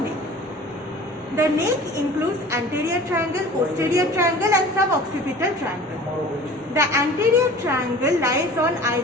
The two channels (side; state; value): both; normal; correlation 0.43